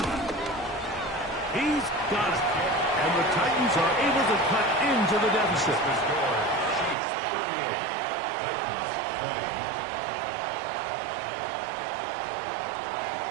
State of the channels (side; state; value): left; drops out; at 7.0 s